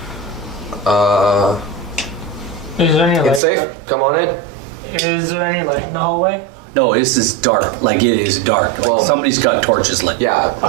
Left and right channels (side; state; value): left; drops out; at 3.4 s